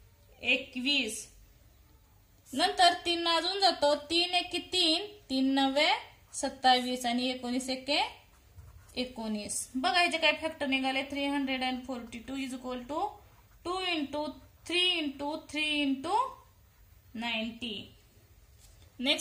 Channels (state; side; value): identical; both; correlation 1.00